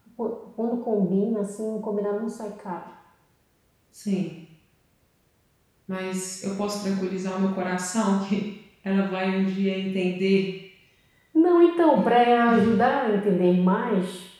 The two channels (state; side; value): identical; both; correlation 1.00